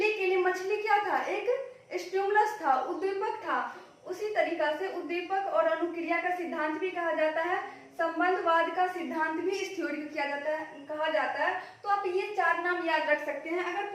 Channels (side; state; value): both; identical; correlation 1.00